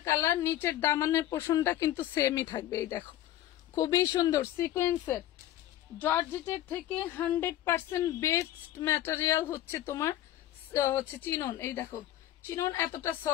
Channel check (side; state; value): right; quieter; 13.2 dB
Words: কালার। নিচের দামানের পোর্শনটা কিন্তু সেমই থাকবে। এই দেখো খুবই সুন্দর সিকোয়েন্সের, জর্জেটের থেকে 100% বেস্ট ম্যাটেরিয়াল হচ্ছে তোমার হচ্ছে চিনন। এই দেখো চিনন এতটা